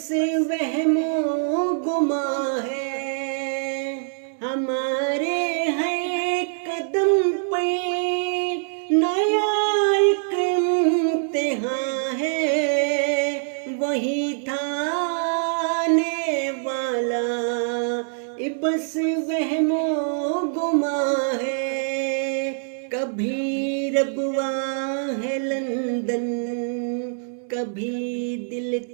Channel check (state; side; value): silent; left; digital silence